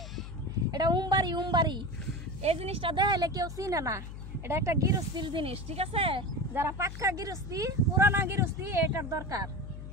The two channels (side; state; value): left; noise; hum, 10 dB below the sound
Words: এটা উমবাড়ি। এই জিনিসটা দেখাইলে কেউ চিনে না, এটা একটা গৃহস্থির জিনিস, ঠিক আছে? যারা পাক্কা গৃহস্থী, পুরানা গৃহস্থী, এটার দরকার।